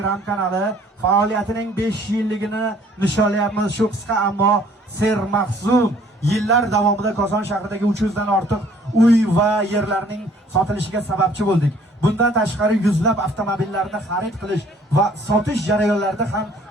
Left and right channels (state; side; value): normal; both; correlation 0.58